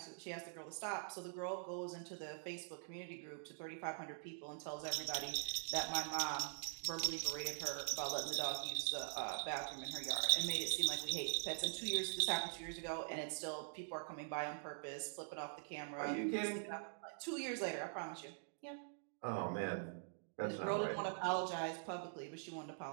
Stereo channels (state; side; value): silent; left; digital silence